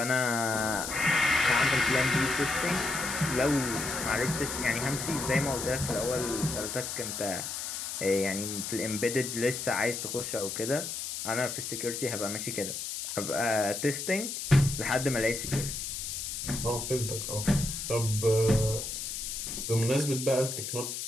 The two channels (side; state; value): left; noise; hiss, 5 dB below the sound